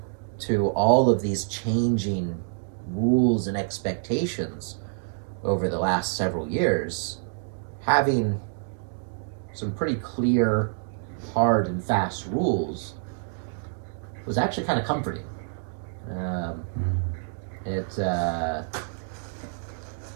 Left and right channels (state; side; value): silent; left; digital silence